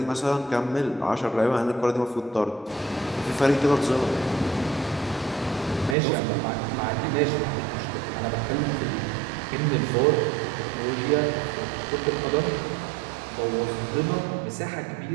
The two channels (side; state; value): left; drops out; at 6.0 s